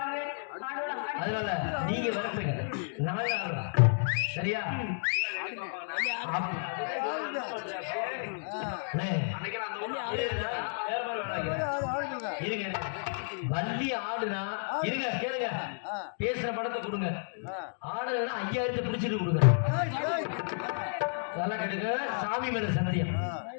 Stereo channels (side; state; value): right; silent; digital silence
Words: அதனால நீங்க வரப்பீங்க நாங்க ஆடுறோம் சரியா இருங்க வள்ளி ஆடுனா இருங்க கேளுங்க பேசுற படத்தை கொடுங்க ஆடுனா 5000 பிடிச்சிட்டு கொடுங்க நல்லா கேட்டுங்க சாமி மேல சத்தியம்